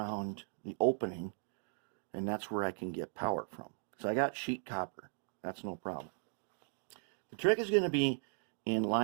the opening, and that's where I can get power from. So I got sheet copper. That's no problem. The trick is going to be in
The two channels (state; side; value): silent; left; 53 dB below the other